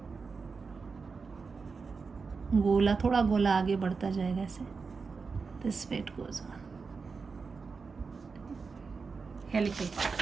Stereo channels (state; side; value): quieter; left; 4.8 dB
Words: गोला, थोड़ा गोला आगे बढ़ता जाएगा ऐसे. This way it goes on. Helical